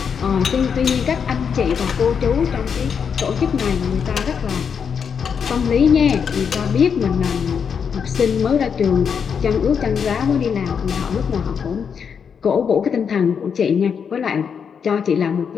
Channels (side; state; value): right; quieter; 6.8 dB